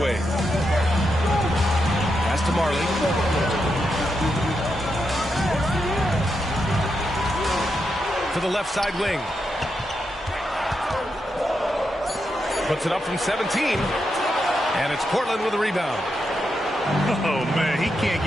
Pass to Marley. To the left side wing. Puts it up from 17. And it's Portland with a rebound. Oh, man, he can't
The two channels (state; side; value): normal; both; correlation 0.85